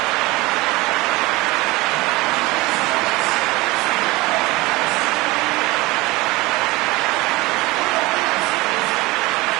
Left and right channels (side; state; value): left; quieter; 21.5 dB